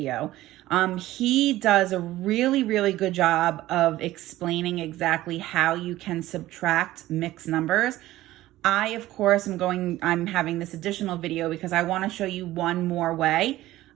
He does a really good job of explaining exactly how you can subtract mixed numbers. I, of course, I'm having this additional video because I want to show you one more way.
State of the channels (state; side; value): quieter; left; 15.9 dB